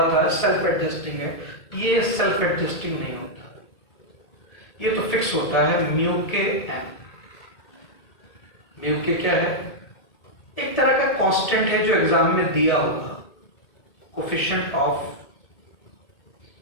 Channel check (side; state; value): right; late; 2.2 ms